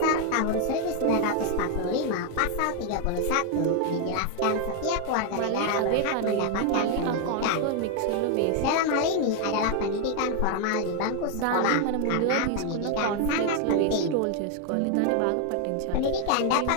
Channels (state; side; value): different; both; correlation 0.01